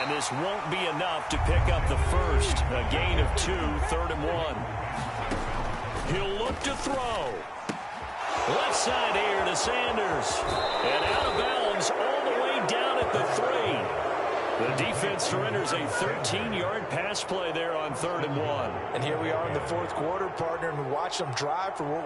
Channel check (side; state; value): both; identical; correlation 1.00